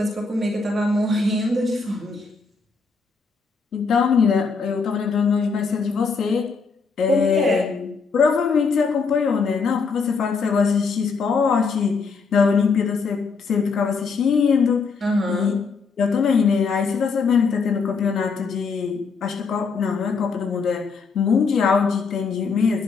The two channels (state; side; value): quieter; right; 4.9 dB